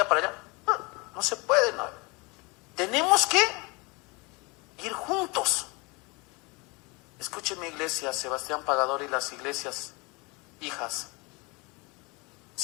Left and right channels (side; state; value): right; quieter; 27.5 dB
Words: para allá? No se puede, no. Tenemos que ir juntos. Escúcheme, iglesia, Sebastián Pagador y las iglesias hijas.